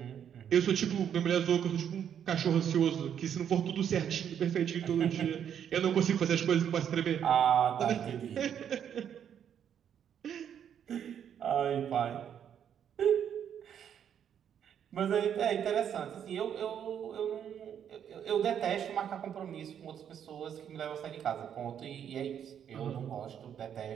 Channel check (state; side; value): quieter; left; 8.9 dB